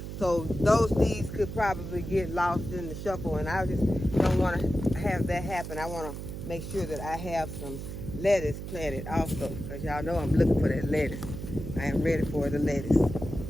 So those seeds could probably get lost in the shuffle, and I just don't want to have that happen. I want to make sure that I have some lettuce planted also, because y'all know I'm looking for that lettuce. I am ready for the lettuce.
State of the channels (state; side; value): noise; right; hum, 8 dB below the sound